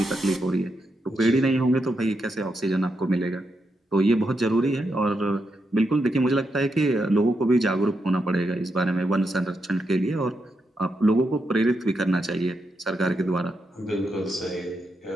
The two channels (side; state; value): both; normal; correlation 0.83